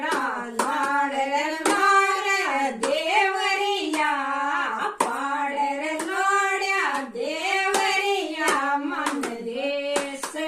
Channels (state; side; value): identical; both; correlation 1.00